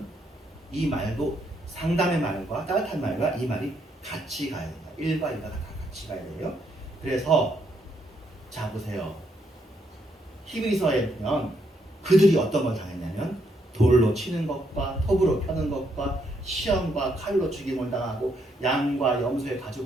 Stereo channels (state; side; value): normal; both; correlation 0.75